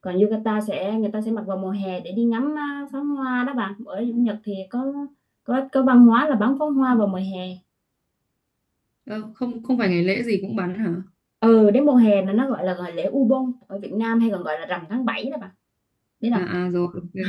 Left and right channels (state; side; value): identical; both; correlation 1.00